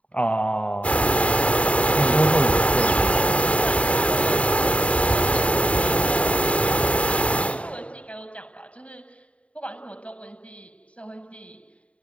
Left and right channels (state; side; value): late; right; 0.064 ms